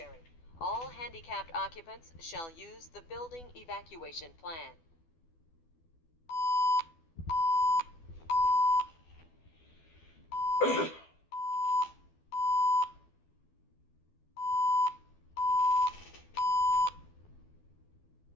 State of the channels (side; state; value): right; late; 12 ms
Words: All handicapped occupants shall use the building evacuation plan.